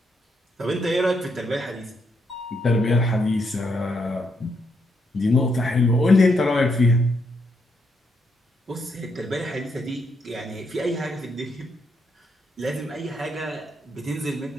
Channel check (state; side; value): normal; both; correlation 0.78